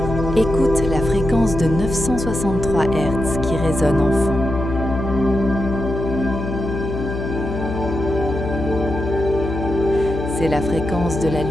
Écoute la fréquence de 963 Hz qui résonne en fond. C'est la fréquence de la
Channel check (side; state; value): left; noise; hum, 5 dB below the sound